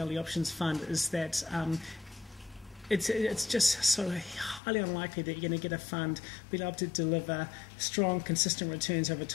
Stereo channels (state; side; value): drops out; right; at 4.6 s